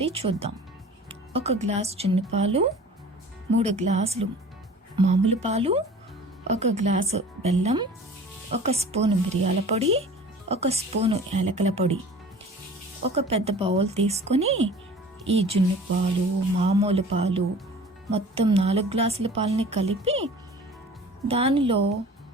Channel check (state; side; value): normal; both; correlation 0.43